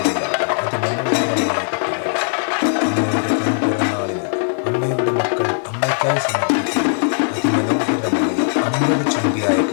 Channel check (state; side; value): silent; right; digital silence